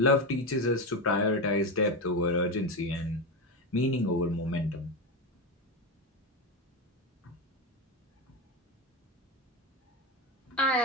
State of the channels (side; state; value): both; normal; correlation 0.14